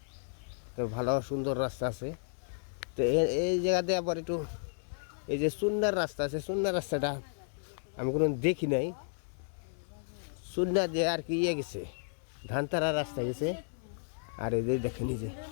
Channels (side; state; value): right; silent; digital silence